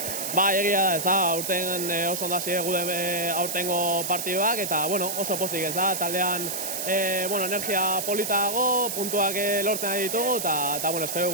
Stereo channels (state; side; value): noise; right; hiss, 3 dB below the sound